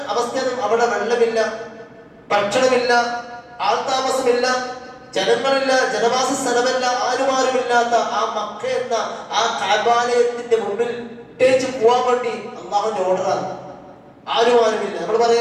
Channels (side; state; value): both; identical; correlation 1.00